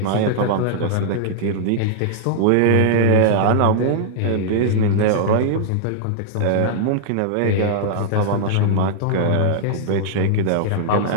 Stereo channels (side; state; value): both; different; correlation -0.02